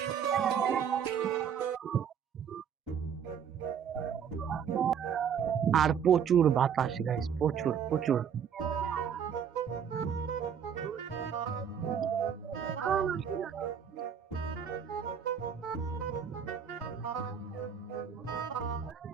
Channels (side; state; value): left; quieter; 7.8 dB